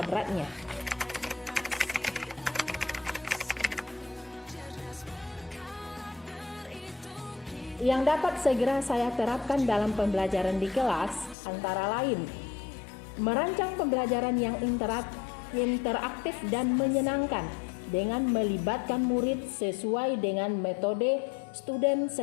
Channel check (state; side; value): drops out; right; at 11.4 s